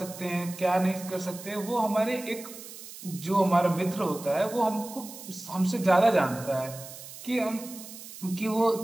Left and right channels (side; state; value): right; noise; hiss, 14 dB below the sound